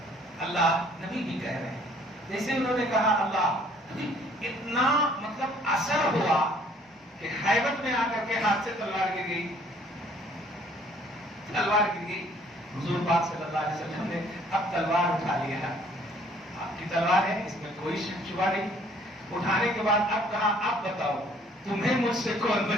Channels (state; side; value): normal; both; correlation 0.59